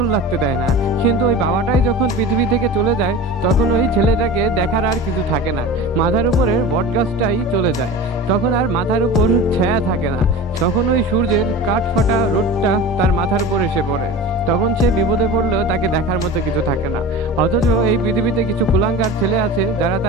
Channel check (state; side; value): normal; both; correlation 0.33